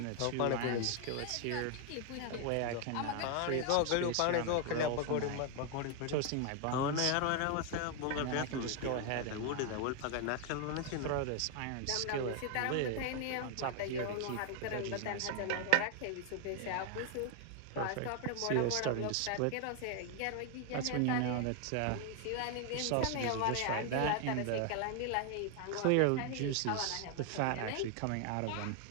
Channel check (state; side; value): different; both; correlation 0.01